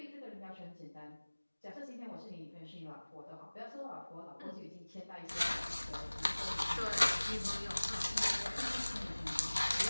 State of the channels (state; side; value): inverted; both; correlation -1.00